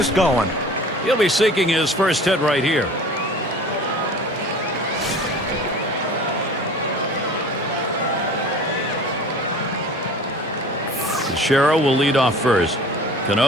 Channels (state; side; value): normal; both; correlation 0.43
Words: going. He'll be seeking his first hit right here. Teixeira will lead off first.